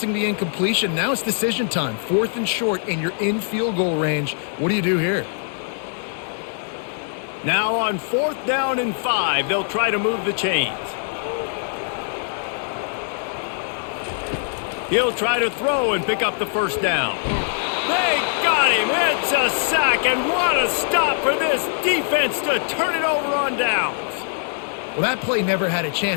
the incompletion. Now it's decision time. 4th and short, and you're in field goal range. What do you do here? Now on 4th down and 5, they'll try to move the chains. He'll try to throw and pick up the first down. They got him. It's a sack, and what a stop for this defense to turn it over on downs. Well, that play never had a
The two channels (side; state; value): right; silent; digital silence